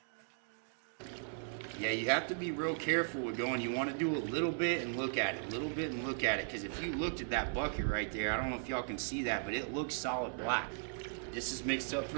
Yeah, you have to be real careful with going. You wanna do a little bit and look at it, a little bit and look at it. Because if you looked at that bucket right there, I don't know if y'all can see that, but it looks solid black. This is mixed up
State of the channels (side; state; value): left; silent; digital silence